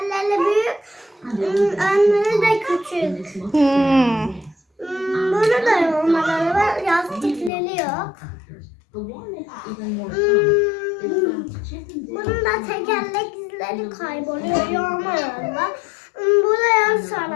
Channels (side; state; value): right; drops out; at 7.5 s